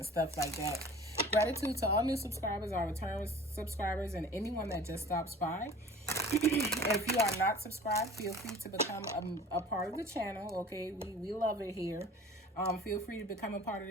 stuff like that. Gratitude to all new subscribers, our return subscribers, and anyone that just stops by. If you are not subscribed, feel free to become a part of the channel, okay? We love it here. Feel free to become a part of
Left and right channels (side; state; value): both; normal; correlation 0.44